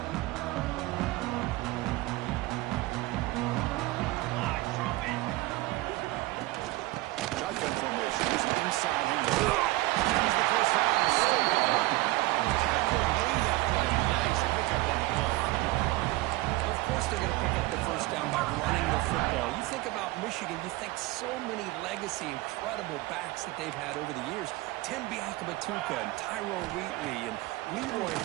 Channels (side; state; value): left; quieter; 19.6 dB